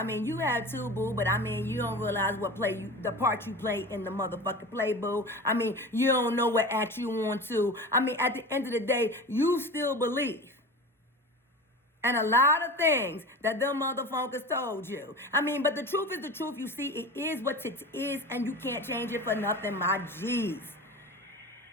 mean, you have too, boo, but I mean, you don't realize the part you play in the motherfucking play, boo. I mean, you don't know what act you want to. I mean, at the end of the day, you still believe. And a lot of things that them motherfuckers told you. I mean, but the truth is the truth. You see, it is what it is, and you can't change it for nothing, my G's.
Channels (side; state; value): both; normal; correlation 0.32